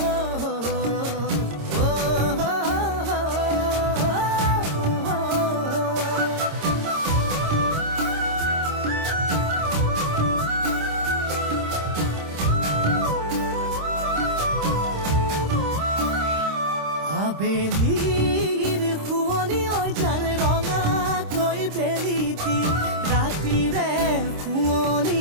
আবেলিৰ শুৱনি অজান ৰঙাকৈ বেলিটি ৰাতিৰে শুৱনি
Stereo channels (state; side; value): late; left; 26 ms